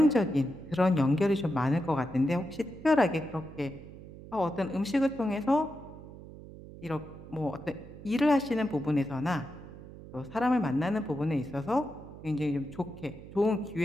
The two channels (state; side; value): noise; right; hum, 16 dB below the sound